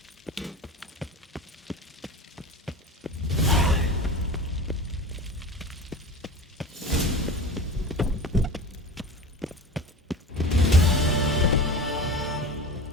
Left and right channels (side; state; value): both; normal; correlation 0.32